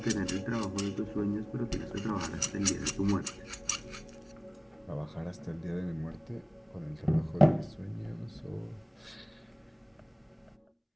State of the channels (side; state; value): both; identical; correlation 1.00